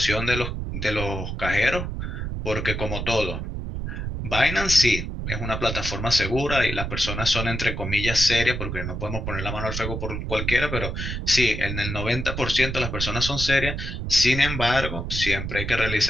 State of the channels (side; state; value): right; noise; rumble, 4 dB below the sound